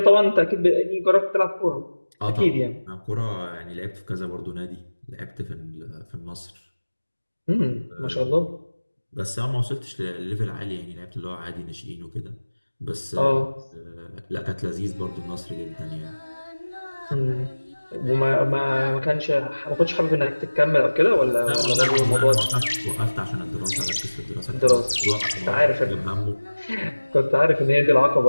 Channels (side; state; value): both; inverted; correlation -1.00